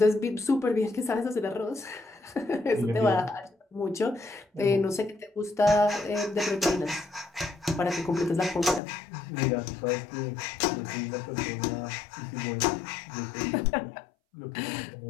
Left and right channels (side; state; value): right; drops out; at 8.8 s